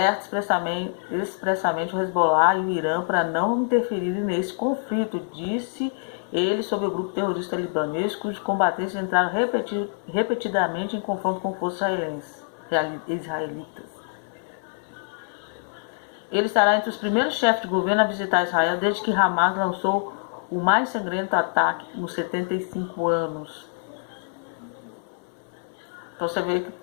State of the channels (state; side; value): silent; right; 61 dB below the other